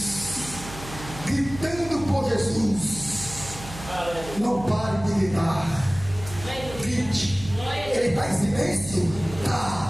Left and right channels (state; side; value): noise; right; hum, 13 dB below the sound